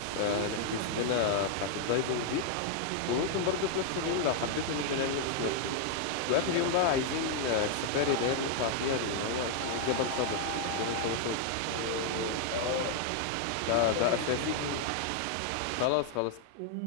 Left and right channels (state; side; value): different; both; correlation 0.00